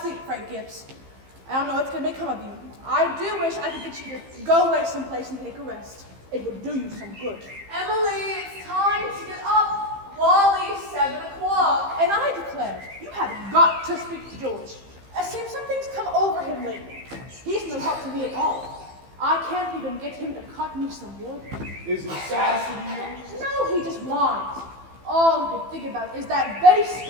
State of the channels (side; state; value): left; late; 15 ms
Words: sleep, Frank Gibbs. I don't know what's going to become of you. I do wish I could get you to go away someplace and take a rest. It would do you some good. Emily, it's time to get up. Wally's 7 o'clock. And I declare, you have got to speak to George. It seems something's come over him lately. He's no help to me at all. I can't even get him to cut me some wood. Is he sassy to you? No, he just whines. All he can think about is that